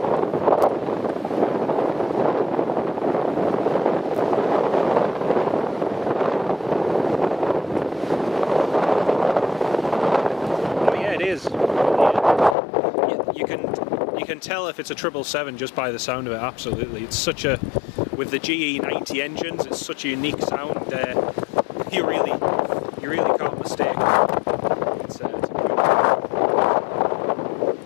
Oh yeah, it is. You can tell if it's a 777 just by the sound of it. Absolutely, it's such a, with the GE90 engines, it's such a unique sound. You really can't mistake it. It's a good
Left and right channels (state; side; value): drops out; right; at 12.6 s